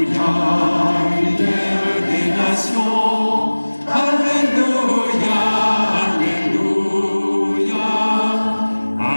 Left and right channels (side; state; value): both; inverted; correlation -1.00